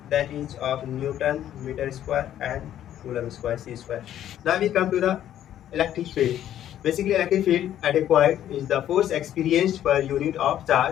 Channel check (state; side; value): quieter; right; 11.4 dB